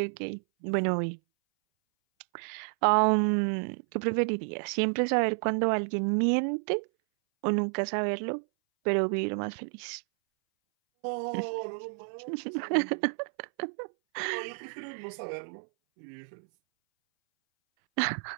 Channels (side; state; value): left; silent; 58 dB below the other